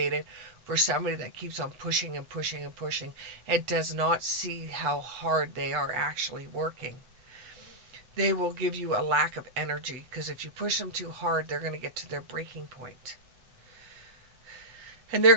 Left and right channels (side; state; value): left; late; 8.1 ms